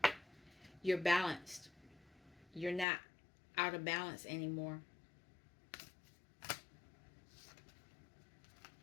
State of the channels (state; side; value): drops out; right; at 2.9 s